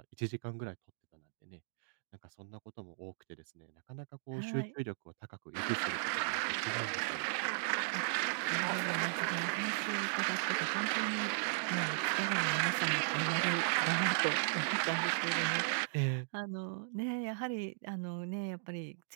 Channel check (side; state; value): left; silent; digital silence